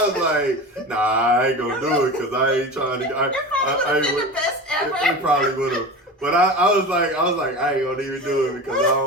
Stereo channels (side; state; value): both; normal; correlation 0.30